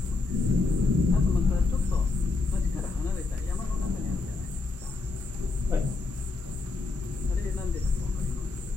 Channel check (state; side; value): quieter; right; 3.8 dB